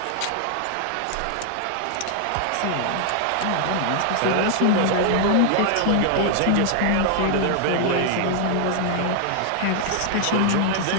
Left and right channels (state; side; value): different; both; correlation 0.00